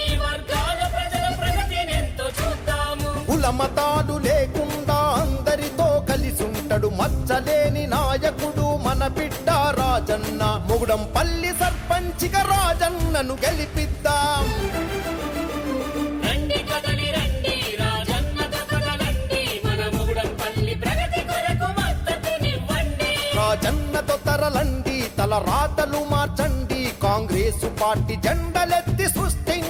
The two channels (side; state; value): both; identical; correlation 1.00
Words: వర్గాల ప్రజల ప్రగతినెంతో చూద్దాము కులమతాలు లేకుండా అందరితో కలిసుంటడు మచ్చలేని నాయకుడు మన బిడ్డ రాజన్న ముగుడంపల్లి సర్పంచిగా రాజన్నను గెలిపిద్దాం రండి కదలి రండి రాజన్నతో కదలండి మన ముగుడంపల్లి ప్రగతి కొరకు మద్దతునివ్వండి రాజన్నతో తరలండి తల రాతలు మార్చండి కాంగ్రెస్ పార్టీ జెండలెత్తి